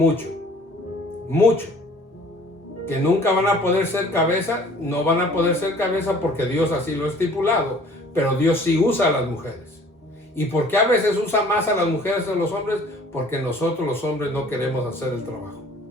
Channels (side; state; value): both; normal; correlation 0.52